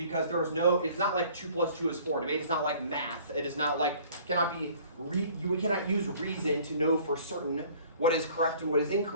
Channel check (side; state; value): both; inverted; correlation -0.53